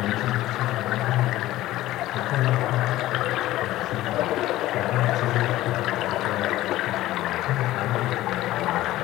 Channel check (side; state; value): right; quieter; 15.7 dB